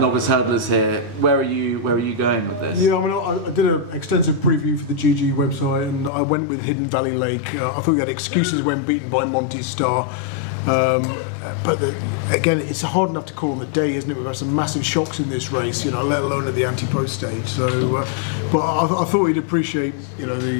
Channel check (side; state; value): right; drops out; at 6.1 s